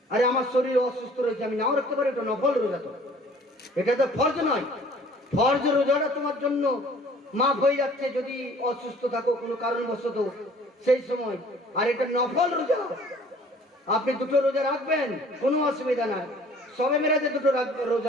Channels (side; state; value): both; normal; correlation 0.53